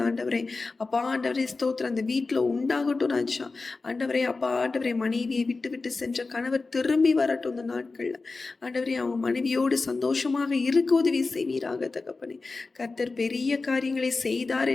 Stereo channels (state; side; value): quieter; right; 3.8 dB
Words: ஆண்டவரே. அப்பா ஆண்டவரே ஸ்தோத்திரம், அந்த வீட்டில் உண்டாகட்டும் ராஜா. ஆண்டவரே அப்பா ஆண்டவரே, மனைவியை விட்டு விட்டு சென்ற கணவர் திரும்பி வரட்டும் இந்த நாட்கள்ல. ஆண்டவரே, அவங்க மனைவியோடு சந்தோஷமாக இருக்க உதவி செய்வீராக தகப்பனே. கர்த்தர் பெரிய காரியங்களை செய்தார்